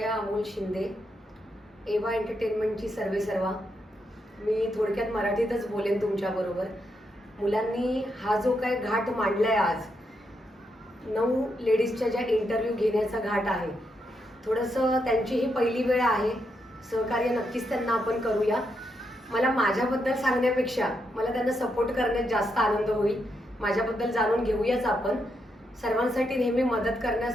अमोल शिंदे, एवा एंटरटेनमेंटची सर्वेसर्वा. मी थोडक्यात मराठीतच बोलेन तुमच्याबरोबर. मुलांनी हा जो काय घाट मांडलाय आज, 9 लेडीजच्या ज्या इंटरव्ह्यू घेण्याचा घाट आहे, थोडंसं त्यांची ही पहिली वेळ आहे. सहकार्य नक्कीच त्यांना आपण करूया. मला माझ्याबद्दल सांगण्यापेक्षा मला त्यांना सपोर्ट करण्यात जास्त आनंद होईल. माझ्याबद्दल जाणून घेऊयाच आपण. सर्वांसाठी नेहमी मदत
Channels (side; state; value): both; normal; correlation 0.81